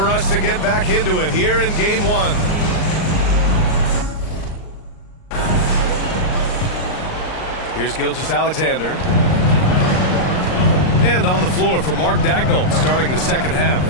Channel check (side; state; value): right; late; 38 ms